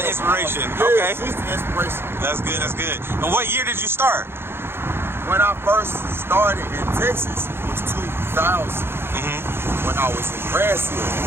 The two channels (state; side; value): late; left; 0.11 ms